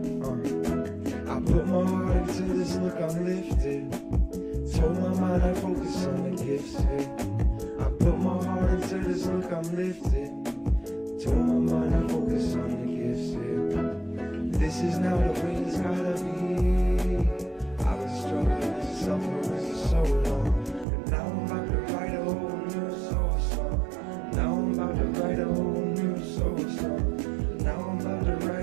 I put my heart into this, look, I'm lifted. Told my mind I focus on the gifts, yeah. I put my heart into this, look, I'm lifted. Told my mind I focus on the gifts, yeah. This is now the way it's gotta be. I've been struggling and suffering for so long, and now I'm about to write a whole new soul song. Now I'm about to write a whole new soul song. Now I'm about to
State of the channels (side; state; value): left; drops out; at 20.9 s